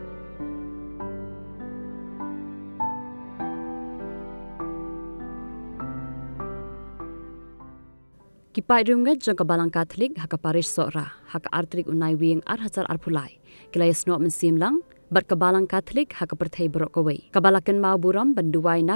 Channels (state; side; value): inverted; both; correlation -1.00